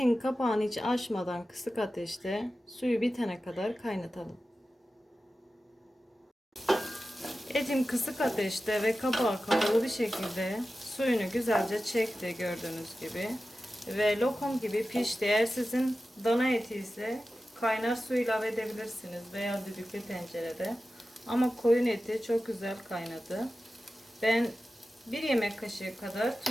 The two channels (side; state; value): both; normal; correlation 0.94